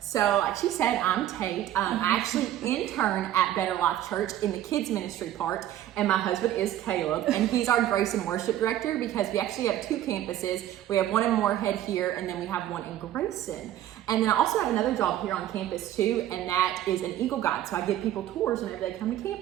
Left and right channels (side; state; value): left; quieter; 12.4 dB